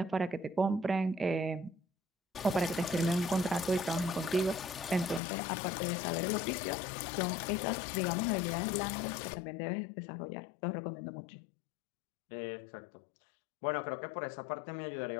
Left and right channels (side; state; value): right; drops out; at 5.2 s